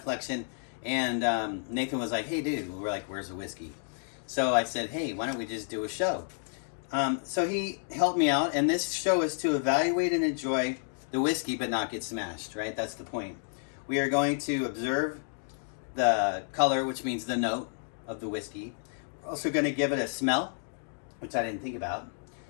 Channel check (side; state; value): right; silent; 57 dB below the other